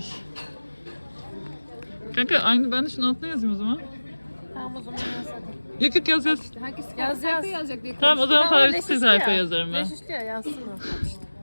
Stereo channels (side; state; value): both; inverted; correlation -1.00